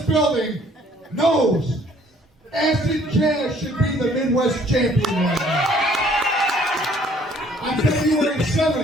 knows Acid Jazz should be the Midwest champion right now. On February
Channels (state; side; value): normal; both; correlation 0.59